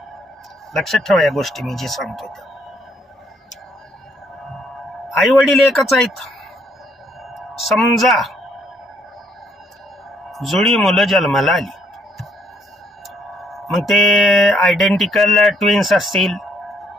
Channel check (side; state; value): both; normal; correlation 0.69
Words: लक्षात ठेवा या गोष्टी मी जे सांगतोय त्या. आई वडील एकच आहेत. समजा जुळी मुलं जन्माला आली, मग ते आयडेंटिकल ट्विन्स असतील